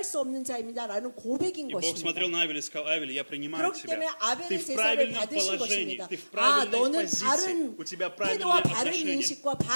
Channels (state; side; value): inverted; both; correlation -1.00